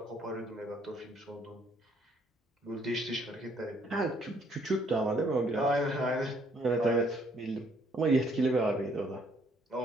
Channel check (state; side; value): normal; both; correlation 0.66